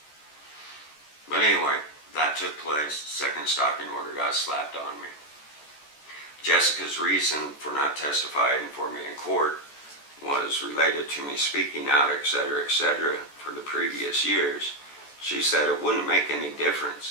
But anyway, that took place. Second stalking order got slapped on me. Jessica's reason for not testifying for me in court was related to me speaking out, etc., for the previous years. She said it wouldn't make any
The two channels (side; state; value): right; late; 14 ms